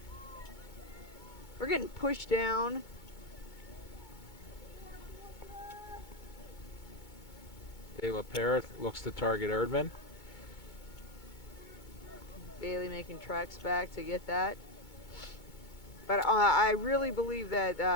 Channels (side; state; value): right; late; 2.2 ms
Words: We're getting pushed down. De La Pera looks to target Erdman. Bailey making tracks back to get that. But I really believe